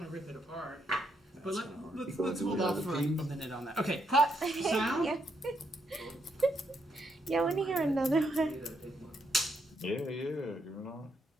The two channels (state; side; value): normal; both; correlation 0.77